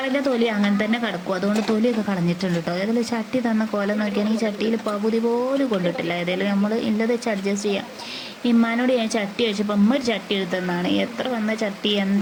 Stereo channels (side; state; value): both; identical; correlation 1.00